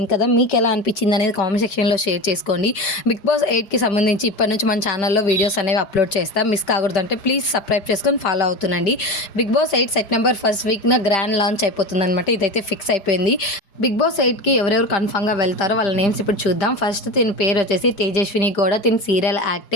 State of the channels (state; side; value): late; right; 5.1 ms